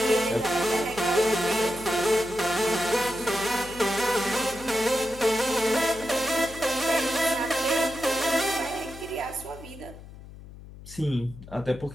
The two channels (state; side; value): noise; left; hum, 16 dB below the sound